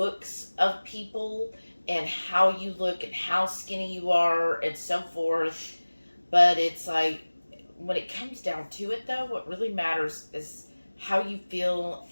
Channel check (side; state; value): both; inverted; correlation -1.00